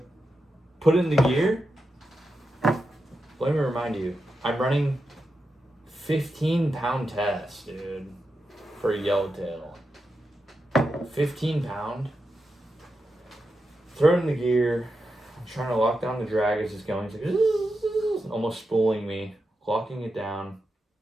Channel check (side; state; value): both; normal; correlation 0.88